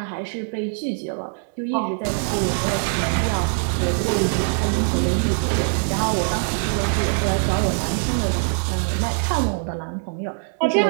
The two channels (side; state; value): left; silent; digital silence